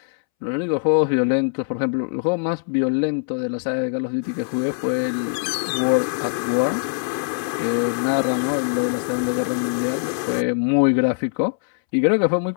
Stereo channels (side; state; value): right; silent; 64 dB below the other